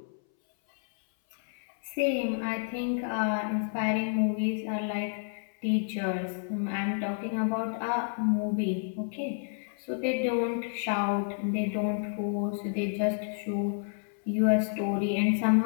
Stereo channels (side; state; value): right; silent; 58 dB below the other